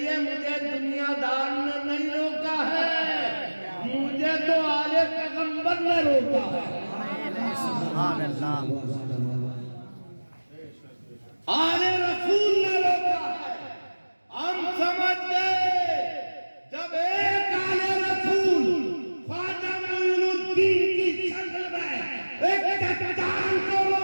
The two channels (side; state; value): both; inverted; correlation -1.00